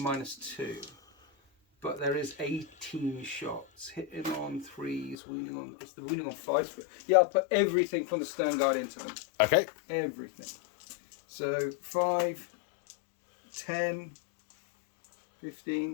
But there is 18 shots. Hitting on 3s, wounding on... It's the wounding on 5s. Yeah, I'll put everything from the Stern Guard into them. Okay. Everything. So 5, 10,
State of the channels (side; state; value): right; drops out; at 5.2 s